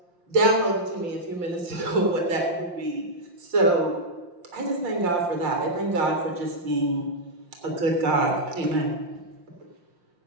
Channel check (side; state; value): left; late; 5.7 ms